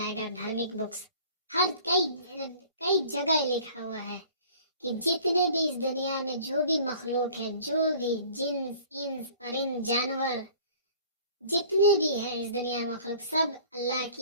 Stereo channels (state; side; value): inverted; both; correlation -0.49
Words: धार्मिक बुक्स हर कई जगह लिखा हुआ है कि जितने भी इस दुनिया में जो भी मखलूक है, जो भी जिन्स, इंस, परिंद, जानवर, जितने भी है इस दुनिया में मखलूक, सब अल्लाह